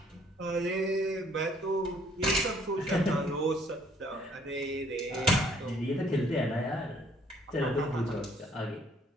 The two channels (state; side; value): normal; both; correlation 0.62